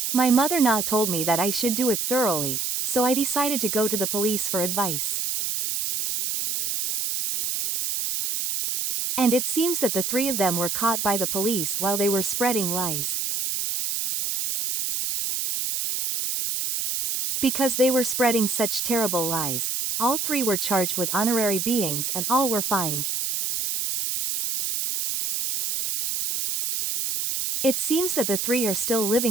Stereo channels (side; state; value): right; noise; hiss, 1 dB below the sound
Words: My mother-in-law told me that I should do it thoroughly, so I decided to go to the police for advice. And it seems that the three of them were caught by the police while they were spreading lies. Because they were spreading such terrible lies, all three were charged with honorary beatings and all were fined. It seems that the three are still